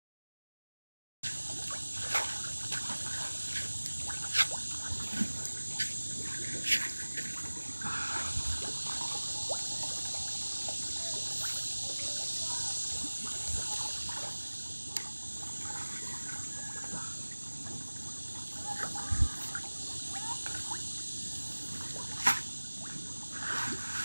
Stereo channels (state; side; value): inverted; both; correlation -1.00